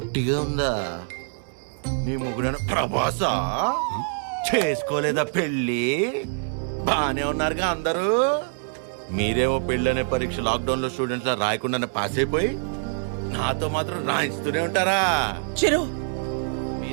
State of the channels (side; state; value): left; silent; digital silence